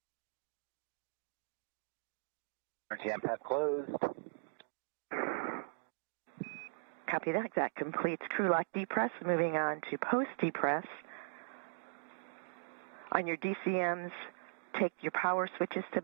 Emergency MPEV closed. Copy that. That completes crew lock depress. Moving on to post depress. On your DCMs, take your power switches to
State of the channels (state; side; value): silent; left; digital silence